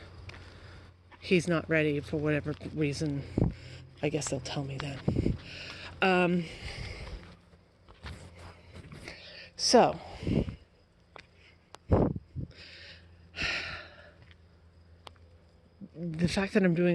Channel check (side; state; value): both; identical; correlation 1.00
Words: he's not ready for whatever reason, I guess they'll tell me then. So, the fact that I'm